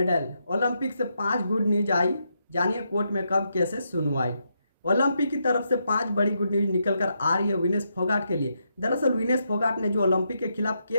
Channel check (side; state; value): both; inverted; correlation -0.81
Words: ओलंपिक से 5 गुड न्यूज आई, जानिए कोर्ट में कब कैसे सुनवाई। ओलंपिक की तरफ से 5 बड़ी गुड न्यूज निकलकर आ रही है विनेश फोगाट के लिए। दरअसल विनेश फोगाट ने जो ओलंपिक के खिलाफ